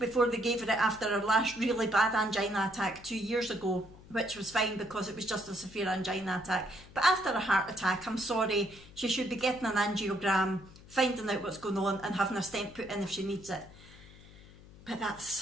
before they gave her it after her last really bad angina attack 2 years ago, which was fine because it was just a severe angina attack. But after a heart attack, I'm sorry, she should be getting an angiogram, finding out what's going on and having a stent put in if she needs it. But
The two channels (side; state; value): left; noise; hum, 21 dB below the sound